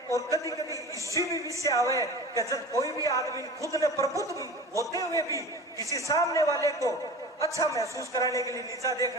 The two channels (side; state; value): both; normal; correlation 0.35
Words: और कभी कभी इसी भी विषय आवे कि जब कोई भी आदमी खुद ने प्रबुद्ध होते हुए भी किसी सामने वाले को अच्छा महसूस कराने के लिए नीचा